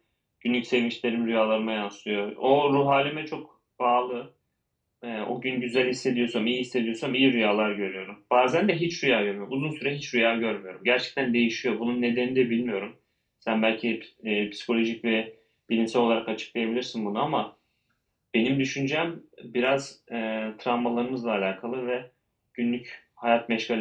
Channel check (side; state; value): both; identical; correlation 1.00